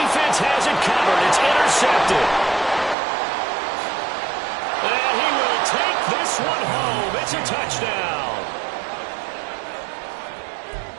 has it covered. It's intercepted. And he will take this one home. It's a touchdown.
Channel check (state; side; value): drops out; left; at 3.0 s